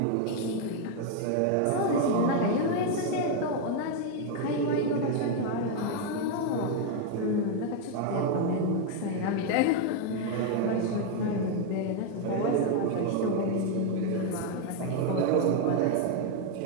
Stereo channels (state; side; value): different; both; correlation 0.01